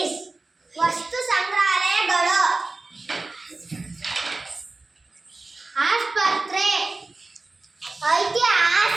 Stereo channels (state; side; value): quieter; left; 3.4 dB